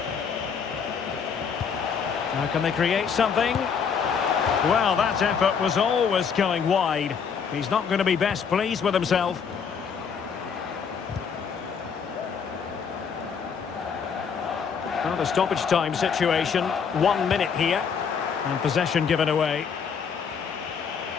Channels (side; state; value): right; quieter; 6.6 dB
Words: Now can they create something? Well, that effort was always going wide. He's not going to be best pleased with himself. Well, the stoppage time situation. 1 minute here. And possession given away.